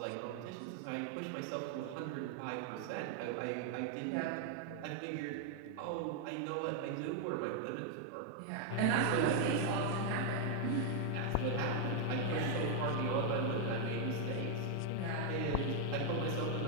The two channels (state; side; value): different; both; correlation 0.00